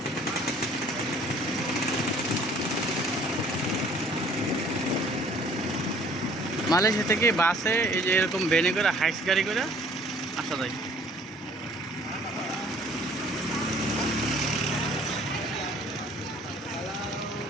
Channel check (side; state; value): both; normal; correlation 0.55